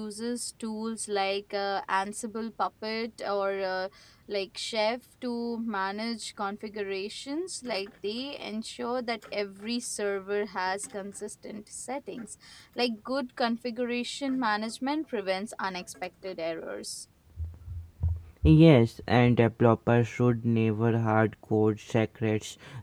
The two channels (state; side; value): identical; both; correlation 1.00